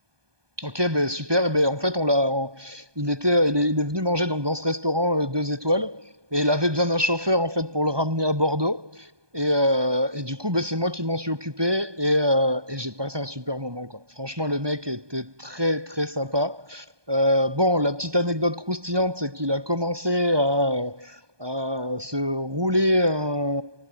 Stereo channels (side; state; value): left; late; 1.2 ms